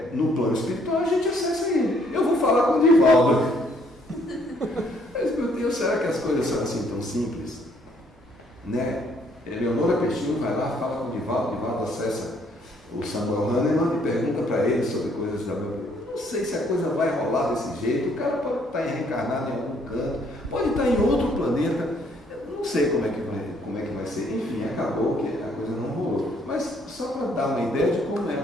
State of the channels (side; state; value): both; normal; correlation 0.66